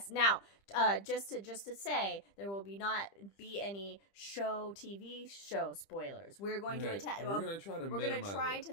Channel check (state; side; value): late; right; 20 ms